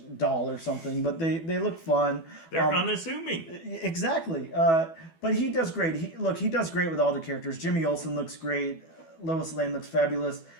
doll or something, but they look fun. They're unassuming. Exactly. But he does great. He does great with all the characters. Jimmy Olsen looks great. Lois Lane looks fabulous.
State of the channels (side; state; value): right; late; 12 ms